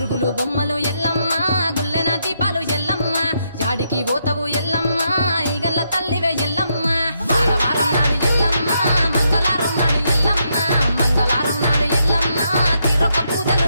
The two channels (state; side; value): inverted; both; correlation -0.78